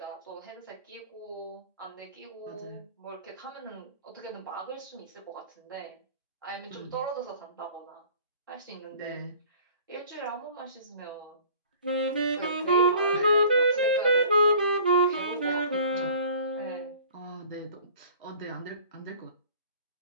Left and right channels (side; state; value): both; inverted; correlation -0.48